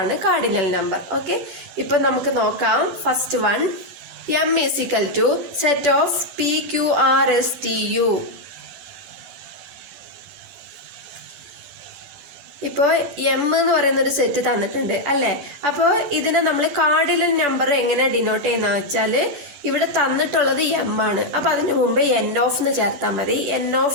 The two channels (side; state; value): left; late; 12 ms